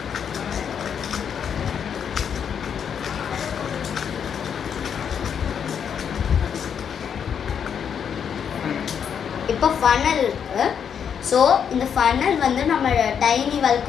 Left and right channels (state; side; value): quieter; right; 7.7 dB